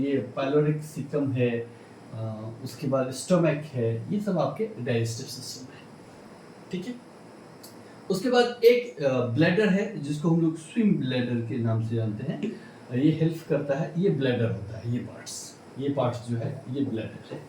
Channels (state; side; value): identical; both; correlation 1.00